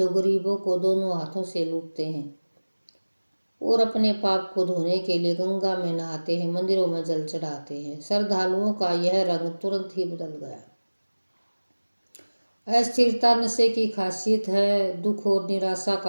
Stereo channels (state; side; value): inverted; both; correlation -1.00